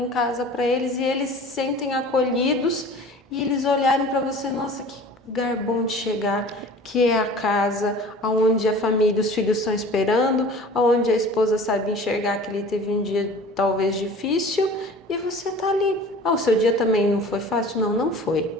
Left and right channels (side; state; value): both; normal; correlation 0.42